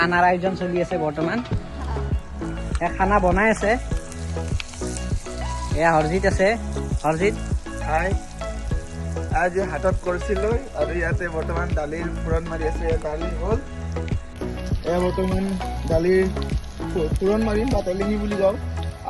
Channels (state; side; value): identical; both; correlation 1.00